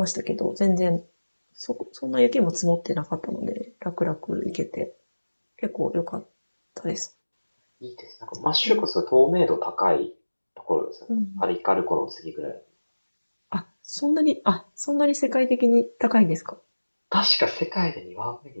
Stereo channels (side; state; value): both; inverted; correlation -1.00